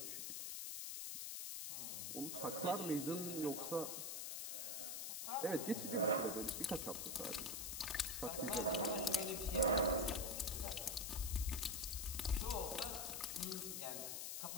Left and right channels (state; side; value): noise; left; hiss, 3 dB below the sound